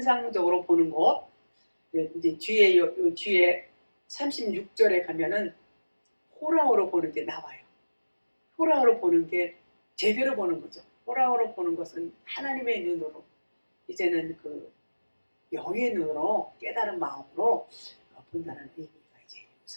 보는 거. 이제 뒤에 36절에 가면은 호라오로 보는 게 나와요. 호라오로 보는 게 제대로 보는 거죠. 호라오로 보는 것은 하나님의 눈으로 이제는 그 영의 눈으로 깨달은 마음으로 본다는 의미가 이제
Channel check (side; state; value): both; inverted; correlation -1.00